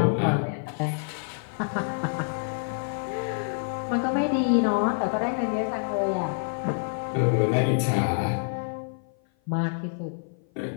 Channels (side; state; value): right; silent; 56 dB below the other